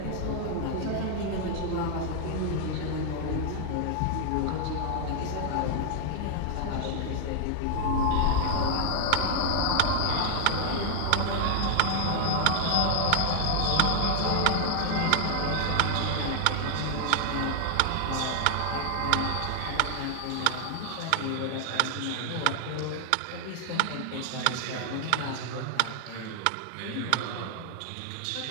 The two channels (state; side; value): different; both; correlation 0.00